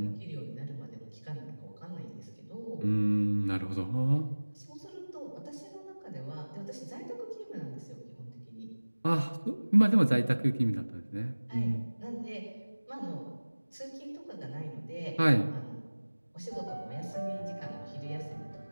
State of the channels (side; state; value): both; inverted; correlation -1.00